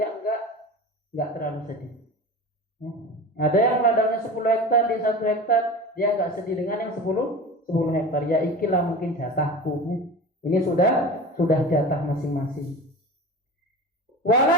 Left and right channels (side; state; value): both; normal; correlation 0.32